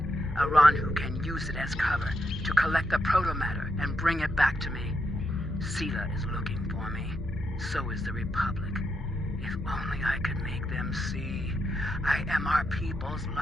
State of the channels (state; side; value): normal; both; correlation 0.82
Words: Aranhu can use it as cover to collect the protomatter and bring it back to me. Sela is looking for me. So is the Republic. If only I could make them see I am our people's